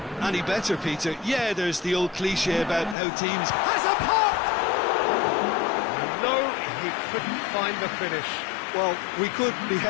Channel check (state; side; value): drops out; right; at 3.0 s